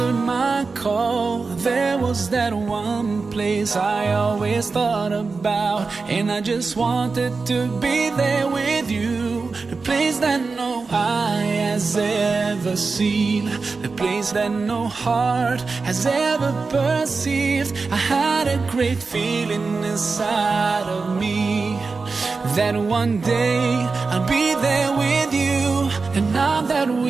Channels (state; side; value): quieter; left; 4.3 dB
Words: my call. There was that one place I always thought about, and I just wanted to be there with you. The place that no eye has ever seen, the place that no heart has ever perceived. I had a great feeling inside of me that one day I'll be there with you. And now that